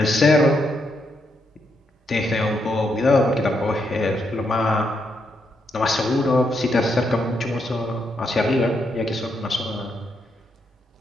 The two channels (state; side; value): normal; both; correlation 0.79